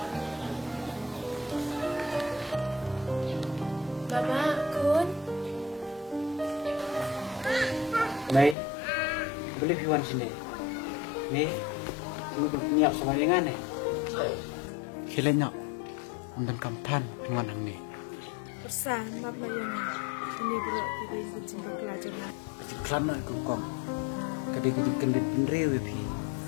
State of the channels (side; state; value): right; drops out; at 8.6 s